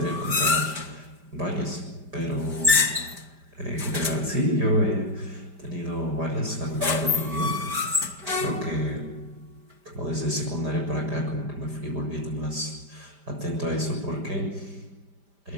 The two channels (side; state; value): left; late; 5.1 ms